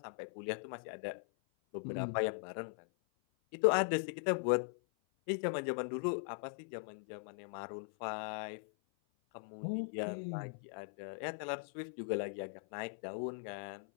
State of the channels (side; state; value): right; silent; 51 dB below the other